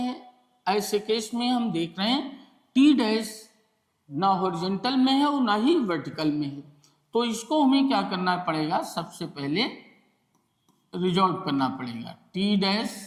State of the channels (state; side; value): identical; both; correlation 1.00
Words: ऐसे केस में हम देख रहे हैं टी डैश ना हॉरिजॉन्टल में है और ना ही वर्टिकल में है, तो इसको हमें क्या करना पड़ेगा, सबसे पहले रिजॉल्व करना पड़ेगा। T dash